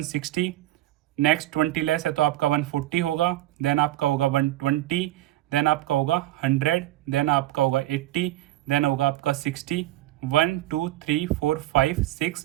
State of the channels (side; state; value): left; quieter; 15.5 dB